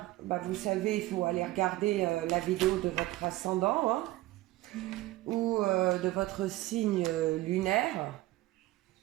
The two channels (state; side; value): quieter; left; 17.7 dB